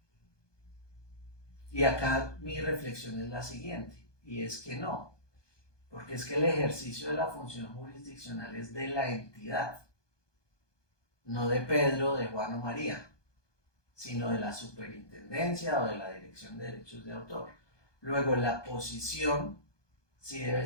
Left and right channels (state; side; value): late; right; 1.2 ms